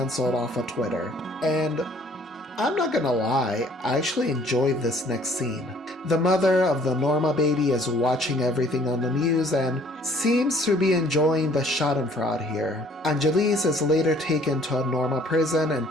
off of Twitter. And I'm not gonna lie, I actually enjoyed this next scene. The mother of the Norma baby is watching everything on the news and seems to be enjoying the schadenfreude here. Angelise is later taken to a Norma prison and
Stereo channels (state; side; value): normal; both; correlation 0.58